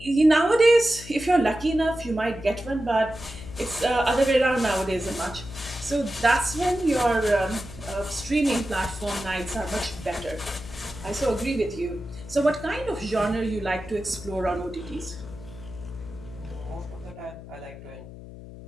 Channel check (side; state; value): left; noise; hum, 14 dB below the sound